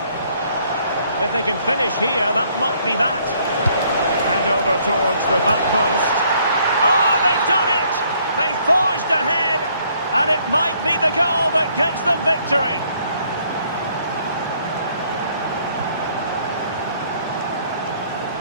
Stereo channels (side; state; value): both; inverted; correlation -0.65